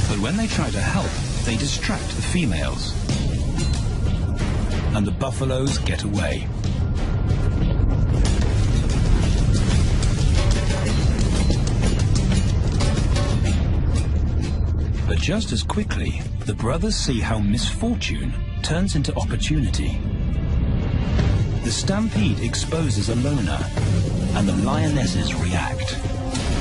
But when they try to help, they distract the females, and the buffaloes get away. But just as quickly, the brothers see how misfortune turns into opportunity. The stampede exposes a loner, and the lionesses react.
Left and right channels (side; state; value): both; identical; correlation 1.00